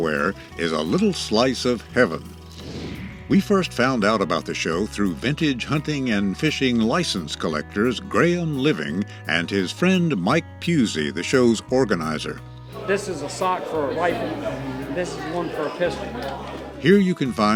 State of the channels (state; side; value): identical; both; correlation 1.00